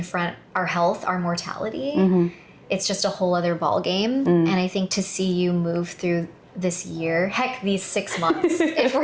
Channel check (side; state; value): both; identical; correlation 1.00